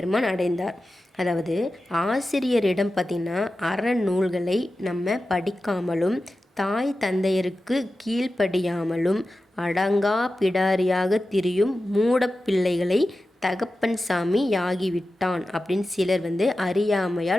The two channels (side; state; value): both; normal; correlation 0.93